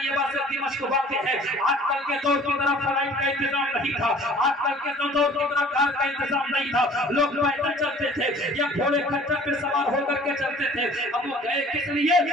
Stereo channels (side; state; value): both; normal; correlation 0.50